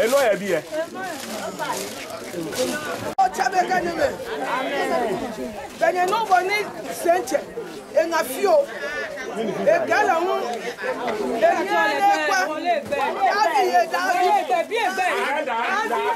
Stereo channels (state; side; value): identical; both; correlation 1.00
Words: Abby. Oh, Chabeka Neme. Amen. Then you know what needs Saint and a few. A gallon.